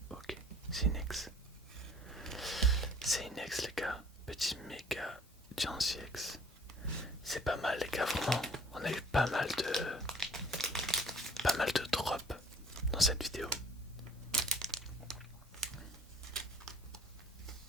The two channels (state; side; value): normal; both; correlation 0.53